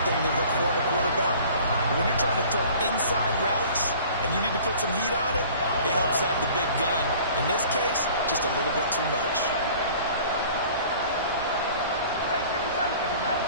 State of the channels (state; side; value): inverted; both; correlation -0.47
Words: thing they look for in a quarterback. But when you're trying to throw inside routes and you need to put some heat on it, it helps have the big gun. In this case, just a little bit too much.